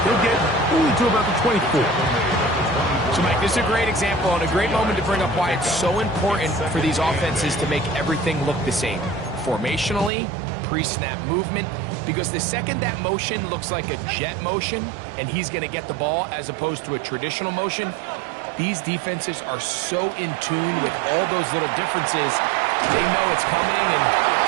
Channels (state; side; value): drops out; left; at 10.1 s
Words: He'll get only to about the 24. So, Mike, this is a great example and a great moment to bring up why it's so important for these offenses to make everything look the same. Formationally, pre-snap movement, because the second that motion looks like a jet motion and he's going to get the ball as opposed to a traditional motion, these defenses are so in tune with all those little differences, they know it's coming and